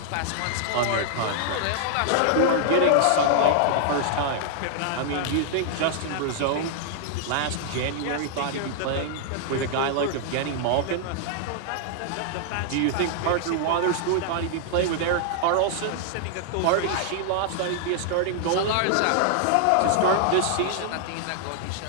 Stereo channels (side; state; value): both; different; correlation -0.01